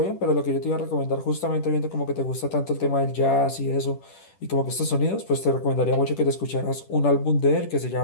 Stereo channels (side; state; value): right; late; 10 ms